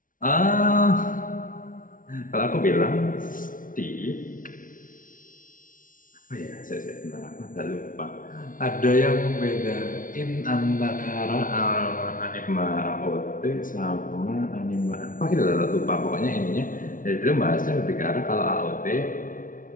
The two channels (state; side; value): late; right; 0.39 ms